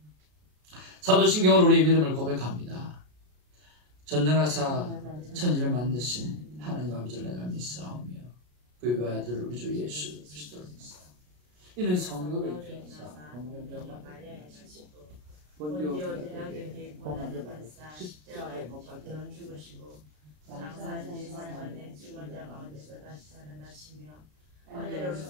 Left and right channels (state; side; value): late; left; 33 ms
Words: 사도신경으로 우리의 믿음을 고백합니다. 전능하사 천지를 만드신 하나님 아버지를 내가 믿사오며 그의 아들 우리 주 예수 그리스도를 믿사오며 이는 성령을 입혀사 동명령과 본디오 빌라도에게 고난을 받으사 십자가에 못 박혀 죽으시고 장사한 지 3일 만에 죽은 자 가운데서 다시 살아나시며